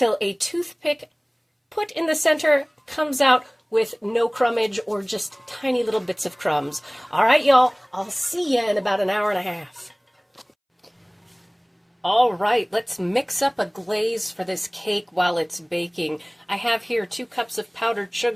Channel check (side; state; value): both; identical; correlation 1.00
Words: a toothpick put in the center comes out with no crumbage or just tiny little bits of crumbs. All right, y'all, I'll see you in about an hour and a half. All right, let's mix up a glaze for this cake while it's baking. I have here 2 cups of powdered